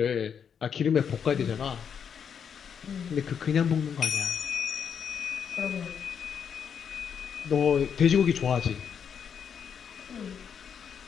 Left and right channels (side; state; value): right; quieter; 7.4 dB